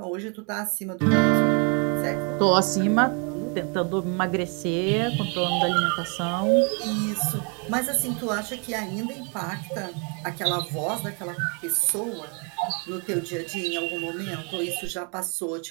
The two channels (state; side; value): quieter; left; 35.8 dB